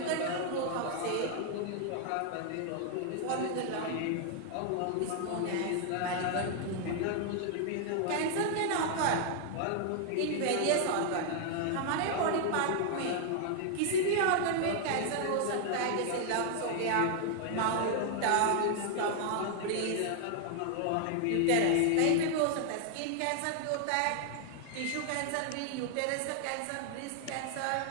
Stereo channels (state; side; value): different; both; correlation 0.00